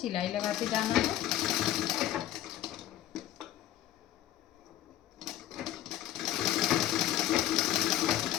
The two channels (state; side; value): quieter; right; 12.8 dB